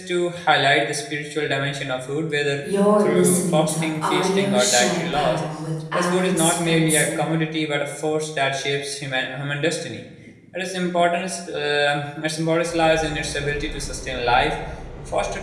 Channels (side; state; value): both; identical; correlation 1.00